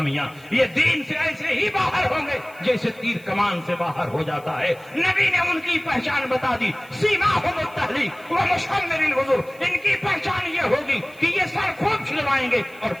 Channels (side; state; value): right; noise; hiss, 26 dB below the sound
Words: یہ دین سے ایسے ہی باہر ہوں گے جیسے تیر کمان سے باہر ہو جاتا ہے۔ نبی نے ان کی پہچان بتا دی، سیماہم التحلیق ومشمر الوضوء، ان کی پہچان یہ ہوگی کہ یہ سر خوب چھلوائیں گے اور